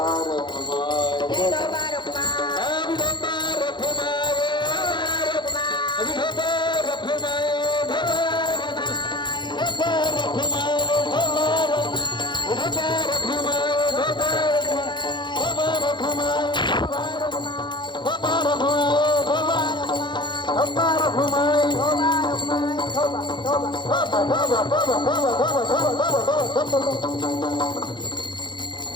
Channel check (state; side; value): late; right; 0.22 ms